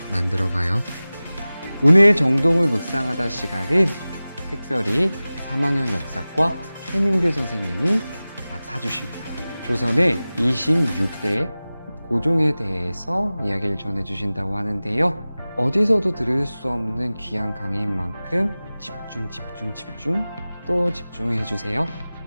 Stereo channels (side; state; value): both; inverted; correlation -0.97